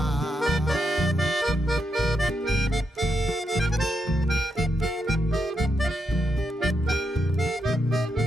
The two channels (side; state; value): both; normal; correlation 0.82